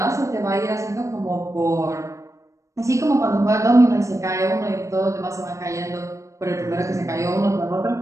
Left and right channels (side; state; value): left; late; 0.15 ms